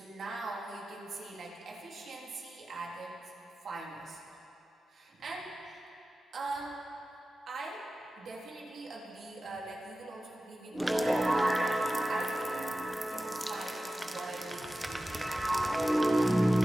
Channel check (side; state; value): both; normal; correlation 0.95